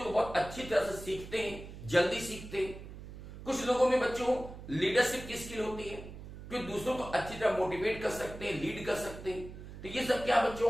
को बहुत अच्छी तरह से सीखते हैं, जल्दी सीखते हैं। कुछ लोगों में बच्चों लीडरशिप की स्किल होती है कि दूसरों को अच्छी तरह मोटिवेट कर सकते हैं, लीड कर सकते हैं। तो ये सब क्या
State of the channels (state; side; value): noise; right; hum, 13 dB below the sound